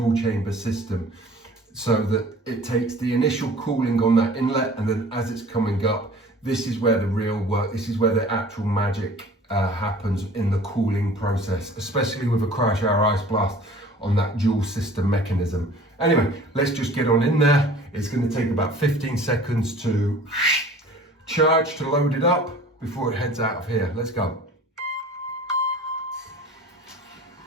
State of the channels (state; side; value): normal; both; correlation 0.46